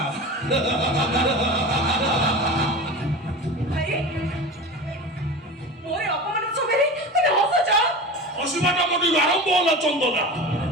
ভাই মোরে অপমান সবেরে তুমি হসছ অসীমাটা মোটি আরম্ভ হলো চন্দনা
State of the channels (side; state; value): both; normal; correlation 0.31